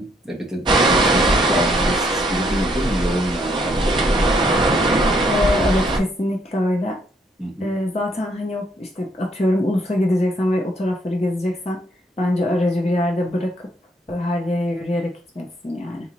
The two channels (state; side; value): normal; both; correlation 0.70